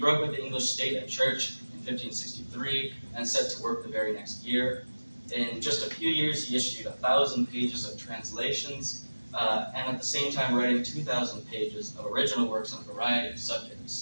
with the English state and church in 1563 and set to work the very next year. In just a few years, he issued 1,000 pages of translations, and at the same time writing 2,000 pages of original works on a variety of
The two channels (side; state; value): both; inverted; correlation -1.00